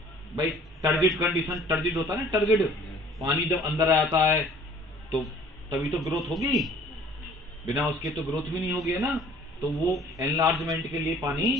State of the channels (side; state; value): both; normal; correlation 0.53